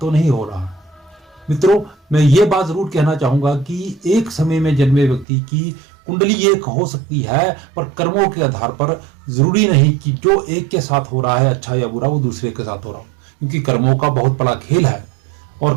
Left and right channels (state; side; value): drops out; left; at 5.2 s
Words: नहीं हो रहा। मित्रों, मैं ये बात जरूर कहना चाहूंगा कि एक समय में जन्मे व्यक्ति की कुंडली एक हो सकती है, पर कर्मों के आधार पर जरूरी नहीं कि जो एक के साथ हो रहा है अच्छा या बुरा वो दूसरे के साथ हो रहा हो, क्योंकि कर्मों का बहुत बड़ा खेल है